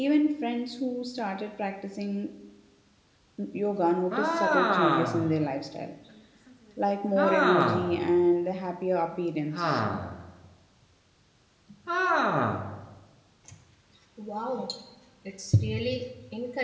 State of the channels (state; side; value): identical; both; correlation 1.00